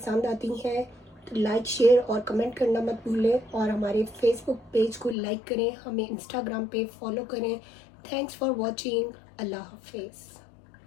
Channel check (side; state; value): right; drops out; at 5.2 s